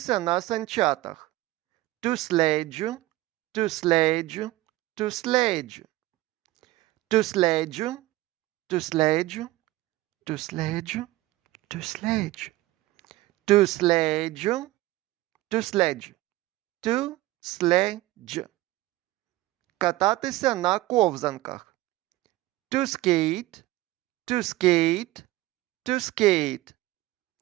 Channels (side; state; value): left; quieter; 17.8 dB